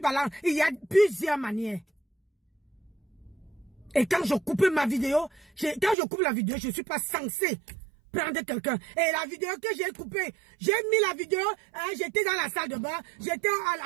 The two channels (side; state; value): left; drops out; at 6.0 s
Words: Il y a plusieurs manières. Et quand je coupe ma vidéo, quand je coupe la vidéo, je ne suis pas censé prendre quelqu'un. Et la vidéo que j'ai coupée, j'ai mis la vidéo, j'étais dans la salle de bain, j'étais